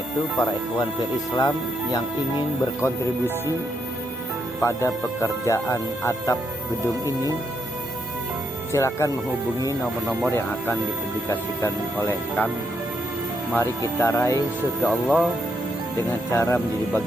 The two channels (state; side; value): normal; both; correlation 0.78